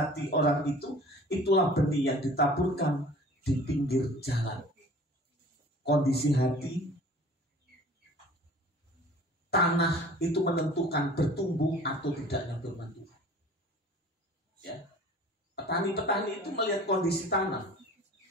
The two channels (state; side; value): normal; both; correlation 0.46